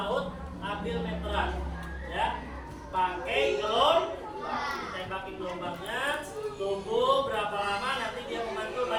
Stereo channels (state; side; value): identical; both; correlation 1.00